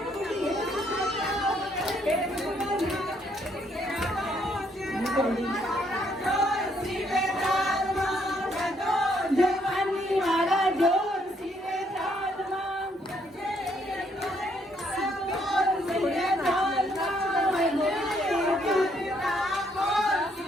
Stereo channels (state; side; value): normal; both; correlation 0.70